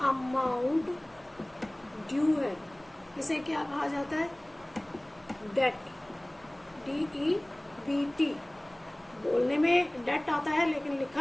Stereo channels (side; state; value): right; noise; rumble, 29 dB below the sound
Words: अमाउंट ड्यू है, इसे क्या कहा जाता है? डेट। DEBT बोलने में डेट आता है, लेकिन